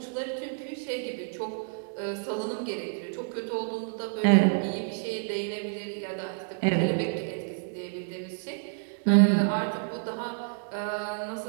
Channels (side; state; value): left; silent; digital silence